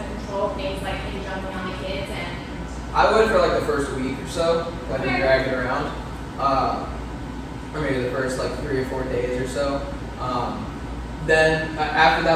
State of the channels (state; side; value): identical; both; correlation 1.00